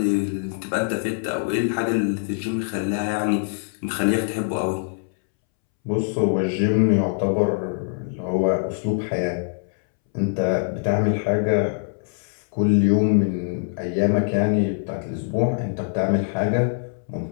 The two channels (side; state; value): right; silent; 63 dB below the other